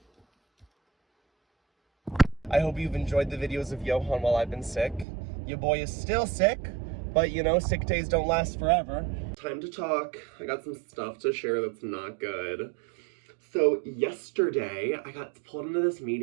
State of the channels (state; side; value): drops out; left; at 5.1 s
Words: I hope you've enjoyed the videos of Johan while I've been sick. Your boy is still sick, but you know, sick days don't last forever. Time to talk. I got some stuff to share that's not good. So yesterday, I got pulled into this